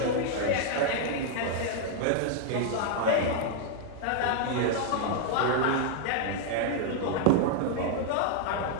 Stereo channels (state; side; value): different; both; correlation 0.00